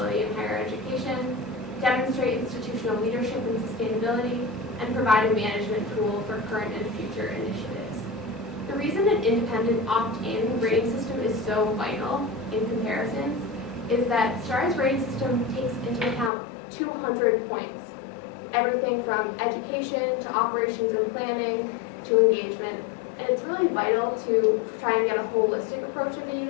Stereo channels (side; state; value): right; drops out; at 16.3 s